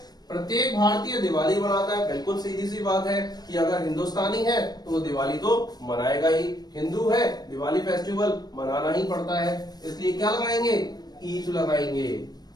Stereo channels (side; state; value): right; late; 0.19 ms